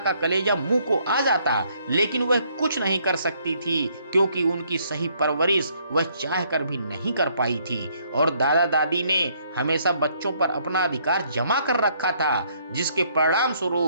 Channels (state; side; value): inverted; both; correlation -0.68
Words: कलेजा मुंह को आ जाता, लेकिन वह कुछ नहीं कर सकती थी क्योंकि उनकी सही परवरिश वह चाह कर भी नहीं कर पाई थी और दादा दादी ने हमेशा बच्चों पर अपना अधिकार जमा कर रखा था, जिसके परिणाम